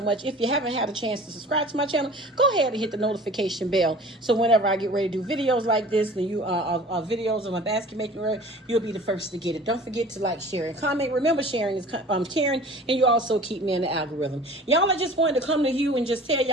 If you haven't had a chance to subscribe to my channel, go ahead and hit the notification bell, so whenever I get ready to do videos like this, and videos of my basket making, you'll be the first to get it. Don't forget to like, share, and comment. Remember, sharing is caring, and you also keep me in the algorithm. Y'all, I just wanted to come to you and just tell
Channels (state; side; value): normal; both; correlation 0.44